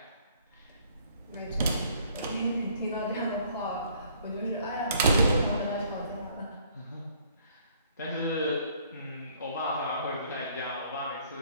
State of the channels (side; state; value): both; inverted; correlation -0.61